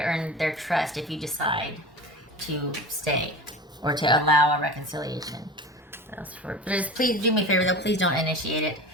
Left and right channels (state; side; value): normal; both; correlation 0.33